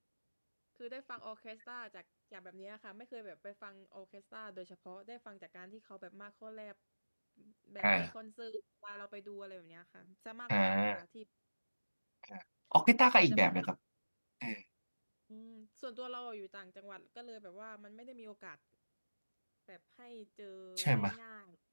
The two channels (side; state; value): both; inverted; correlation -1.00